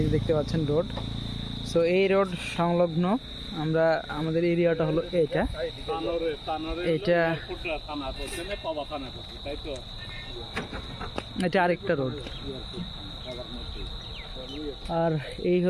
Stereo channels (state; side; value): identical; both; correlation 1.00